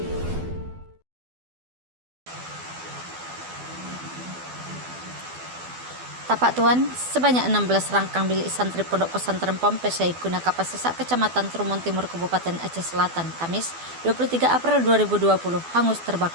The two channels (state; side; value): late; left; 12 ms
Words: Tuan, sebanyak 16 rangkang bilik santri Pondok Pesantren Pompes Syekhuna Kapasesak, Kecamatan Trumon Timur, Kabupaten Aceh Selatan, Kamis 23 April 2020, hangus